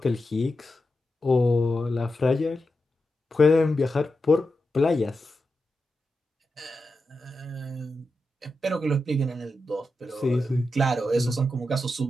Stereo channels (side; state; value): both; normal; correlation 0.89